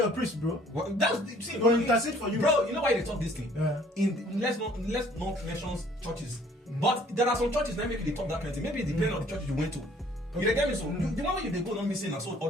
priest, bro. Well, that's see. Go intercede for you, bro. You know why they talk this thing? Let's not mention churches, but there are some churches that maybe they talk that kind of thing. Maybe it depends on the church you went to. Okay. You get me? So the moment you they go not missing and so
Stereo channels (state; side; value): normal; both; correlation 0.57